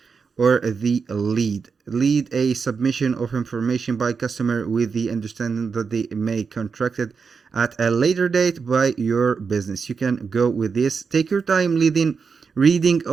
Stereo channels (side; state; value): left; quieter; 5.5 dB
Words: or the lead a submission of information by customer with the understanding that they may contracted at a later date by your business. You can go with this. Take your time reading